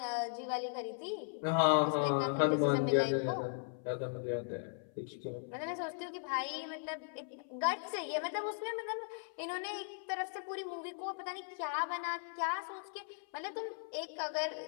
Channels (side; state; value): right; silent; 53 dB below the other